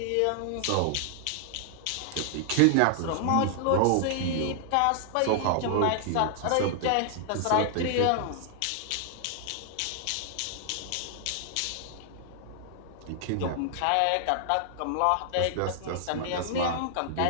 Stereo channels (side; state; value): both; different; correlation 0.00